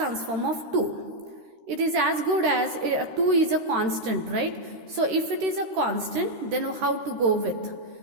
of 2. It is as good as 2 is a constant, right? So if it is a constant, then how to go with?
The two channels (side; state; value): left; late; 13 ms